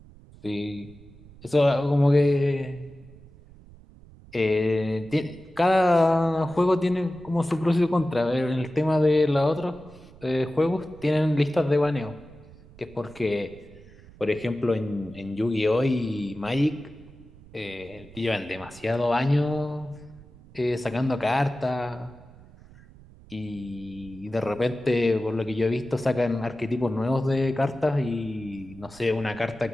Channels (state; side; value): noise; right; rumble, 22 dB below the sound